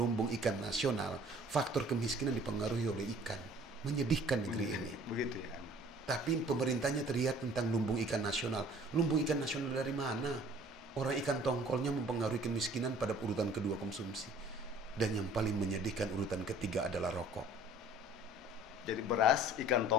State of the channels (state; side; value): normal; both; correlation 0.51